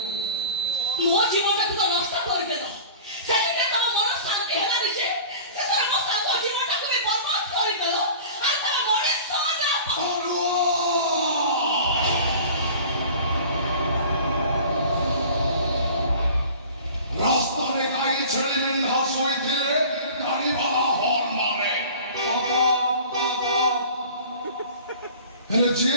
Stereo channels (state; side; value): inverted; both; correlation -0.42